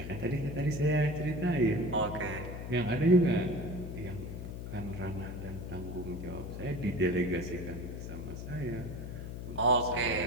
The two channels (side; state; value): left; noise; hum, 7 dB below the sound